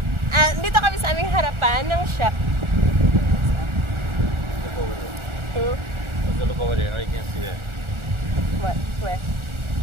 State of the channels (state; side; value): late; left; 1.4 ms